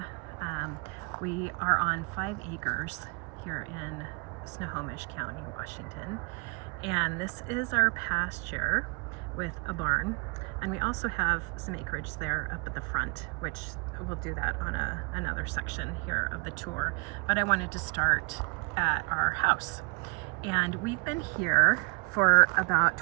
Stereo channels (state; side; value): quieter; left; 32.5 dB